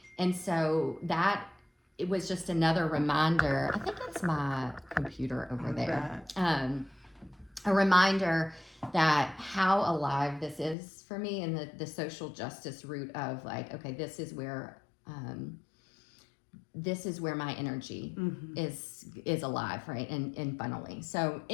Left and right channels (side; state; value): right; drops out; at 10.8 s